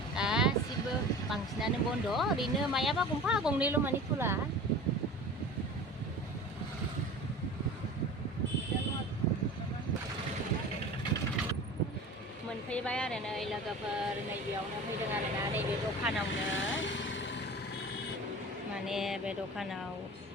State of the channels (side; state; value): both; normal; correlation 0.37